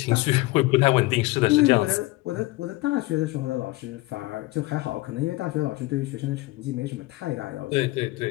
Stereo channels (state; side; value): quieter; right; 20.0 dB